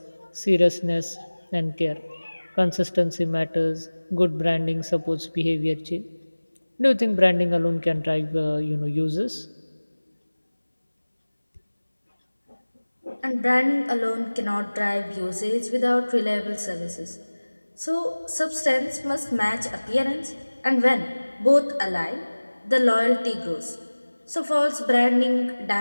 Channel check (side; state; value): both; inverted; correlation -1.00